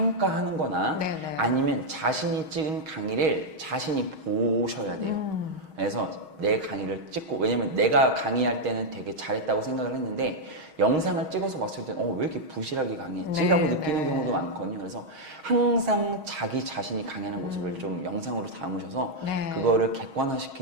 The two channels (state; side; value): late; left; 6.3 ms